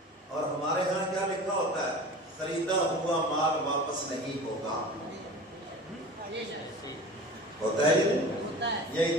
اور ہمارے ہاں کیا لکھا ہوتا ہے، خریدا ہوا مال واپس نہیں ہوگا، ہوتا ہے یہ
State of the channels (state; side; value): normal; both; correlation 0.37